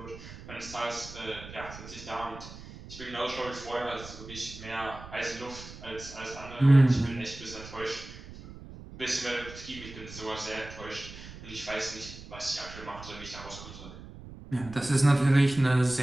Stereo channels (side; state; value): right; noise; rumble, 15 dB below the sound